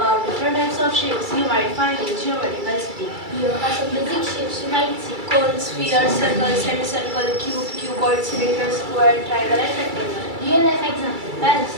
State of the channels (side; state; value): left; late; 2.3 ms